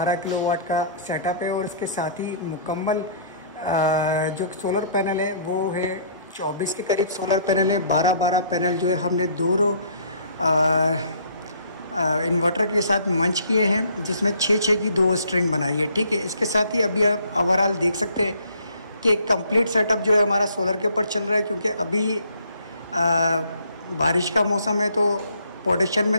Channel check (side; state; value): both; inverted; correlation -0.60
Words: किलोवाट का सेटअप है और इसके साथ ही मुकम्मल जो सोलर पैनल है वो है 24 के करीब सोलर पैनल है। 12-12 पैनल जो है हमने दोनों इन्वर्टर के साथ मंच किए हैं, जिसमें 6-6 की 2 स्ट्रिंग बनाई है। ठीक है, इसके साथ ही अभी आप ओवरऑल देख सकते हैं कि कंप्लीट सेटअप जो है हमारा सोलर के ऊपर चल रहा है, क्योंकि अभी बारिश का मौसम है तो प्रोडक्शन